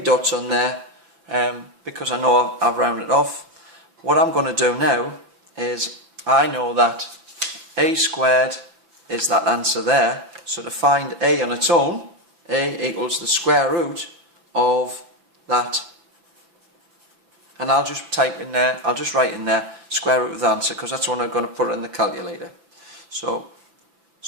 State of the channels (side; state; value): left; late; 5.9 ms